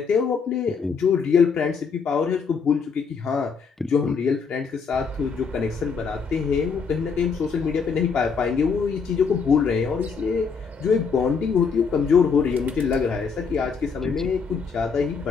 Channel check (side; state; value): right; quieter; 5.6 dB